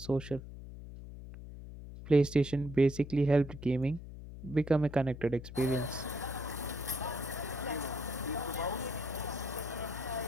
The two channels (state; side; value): noise; left; hum, 12 dB below the sound